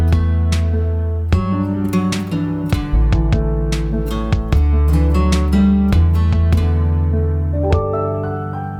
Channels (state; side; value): identical; both; correlation 1.00